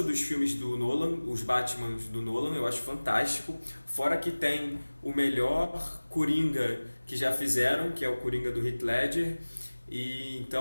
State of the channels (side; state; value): both; inverted; correlation -1.00